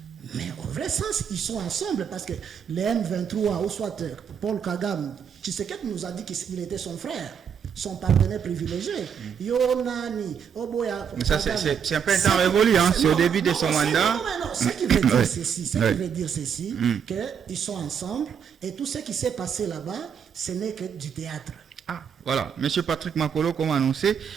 Mais au vrai sens, ils sont ensemble parce que les M23, ou soit Paul Kagame, Tshisekedi nous a dit qu'il était son frère, son partenaire privilégié. Yonani, Oboya. Mais ça, c'est un peu un temps révolu, hein? C'est au début de son mandat. Non, ce qui veut dire ceci, qu'ils sont ensemble et tout ce qui s'est passé là-bas, ce n'est que du théâtre. Ah, voilà. Monsieur Patrick Makolo, comme annoncé,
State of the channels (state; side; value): quieter; left; 7.5 dB